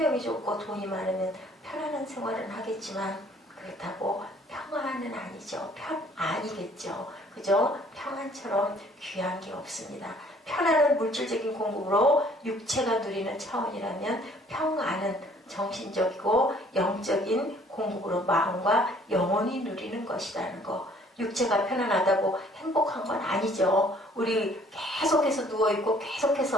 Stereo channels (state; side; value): normal; both; correlation 0.58